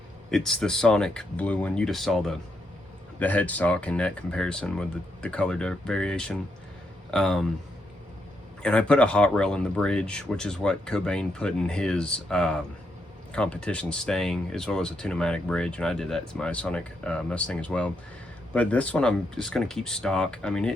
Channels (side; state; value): both; normal; correlation 0.79